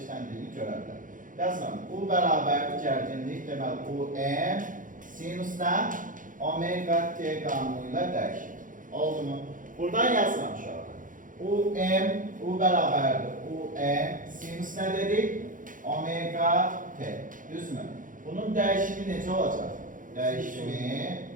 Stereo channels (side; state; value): left; late; 0.39 ms